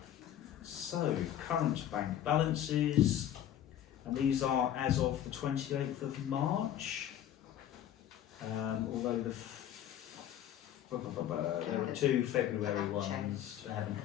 So, current bank balances, and these are as of the 28th of March, although there are 2 February ones. They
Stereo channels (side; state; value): right; quieter; 11.0 dB